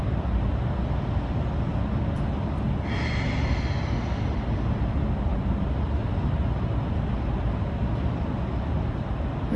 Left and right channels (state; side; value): identical; both; correlation 1.00